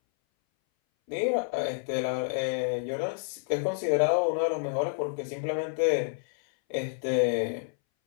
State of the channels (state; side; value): silent; right; 59 dB below the other